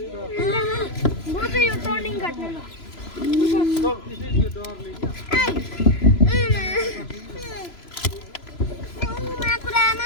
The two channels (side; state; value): right; late; 3.0 ms